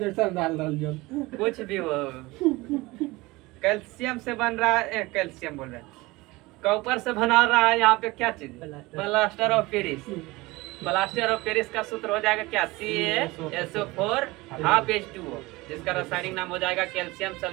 डाल जो कुछ भी हो, कैल्शियम से बन रहा है, कैल्शियम बोल रहे हैं, कॉपर से बना रहा है यहाँ पे क्या चीज? Plaster of Paris. Plaster of Paris का सूत्र हो जाएगा क्या? CaSO4 हाफ H2O, जिसका रासायनिक नाम हो जाएगा कैल्शियम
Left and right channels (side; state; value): left; quieter; 21.5 dB